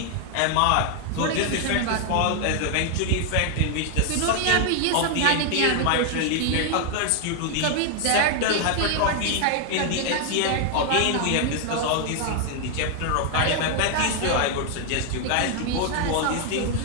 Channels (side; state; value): both; different; correlation 0.00